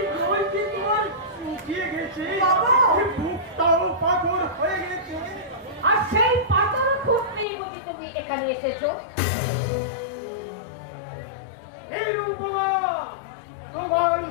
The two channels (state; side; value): drops out; right; at 7.5 s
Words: জল কি তোমার শুকিয়ে গেছে, বাবা! বুকটাও পাথর হয়ে গেছে। আর সেই পাথর খুঁজতেই বুঝি তুমি এখানে এসেছো? এই রূপমা, তোমার